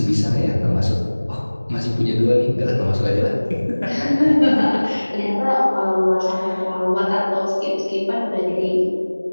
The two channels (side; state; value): both; inverted; correlation -1.00